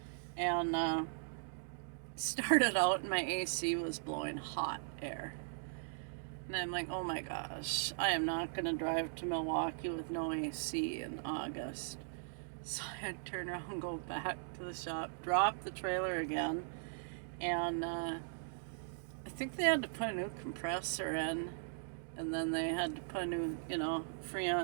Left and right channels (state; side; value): silent; left; digital silence